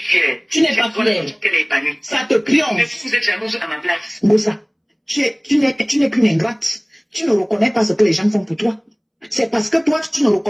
Tu n'es pas fière. Elle est épanouie. Ça te triomphe. Mais vous êtes jalouse à ma place. Ngosa, tu n'es qu'une ingrate. Tu ne reconnais pas ce que les gens font pour toi. C'est parce que toi, tu ne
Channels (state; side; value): identical; both; correlation 1.00